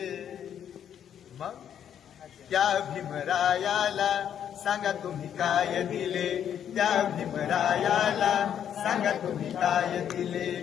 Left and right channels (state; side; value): quieter; right; 9.3 dB